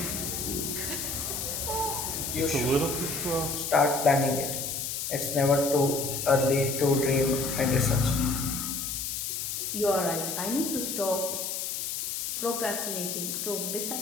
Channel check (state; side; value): noise; left; hiss, 3 dB below the sound